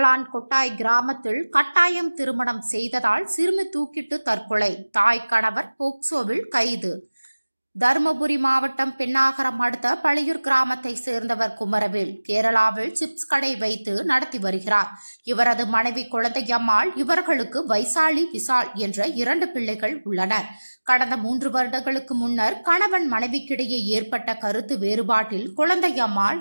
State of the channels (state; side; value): inverted; both; correlation -1.00